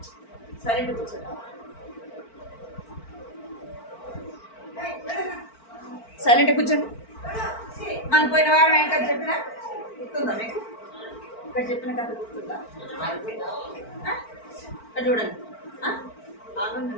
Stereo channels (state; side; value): late; right; 4.5 ms